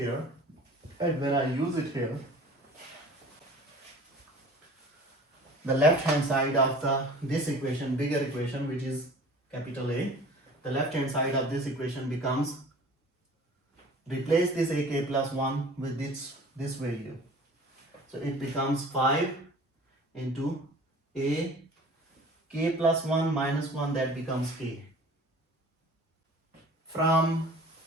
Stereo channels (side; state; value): both; normal; correlation 0.45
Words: And when I use it here, the left hand side of this equation, bigger equation, which is capital A, the left hand side of this equation becomes, replace this ak plus 1 with this value. So it becomes 5 into a k plus 1 minus 1, that becomes k. From